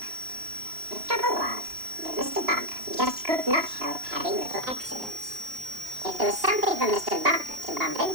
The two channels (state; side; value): late; left; 3.0 ms